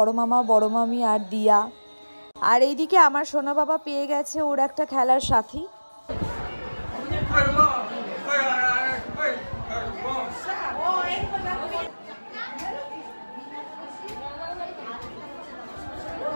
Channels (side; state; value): both; inverted; correlation -1.00